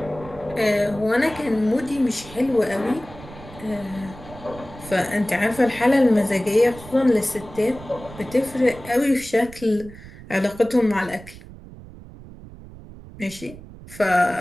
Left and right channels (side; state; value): right; noise; rumble, 17 dB below the sound